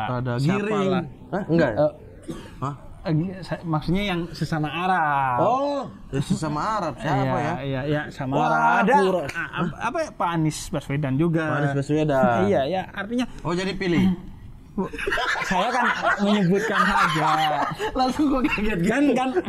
Giring. Enggak. Maksudnya yang sesama Arab. Oh, sesama Arab siapa ya? Iya, Samara. Ada apa ya, Pak Anies Baswedan juga. Pak Anies Baswedan. Iya, ya, artinya jadi pilih. Saya kan menyebutkan saja. Langsung gue kaget kan.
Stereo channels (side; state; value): both; identical; correlation 1.00